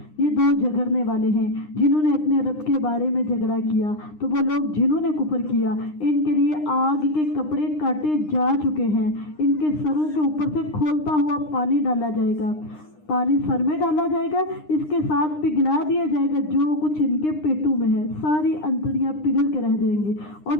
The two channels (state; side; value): late; right; 9.8 ms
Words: یہ دو جھگڑنے والے ہیں جنہوں نے اپنے رب کے بارے میں جھگڑا کیا، تو وہ لوگ جنہوں نے کفر کیا ان کے لیے آگ کے کپڑے کاٹے جا چکے ہیں، ان کے سروں کے اوپر سے کھولتا ہوا پانی ڈالا جائے گا، پانی سر میں ڈالا جائے گا، اس کے ساتھ پگھلا دیا جائے گا جو کچھ ان کے پیٹوں میں ہے، ساری انتڑیاں پگھل کے رہ جائیں گے اور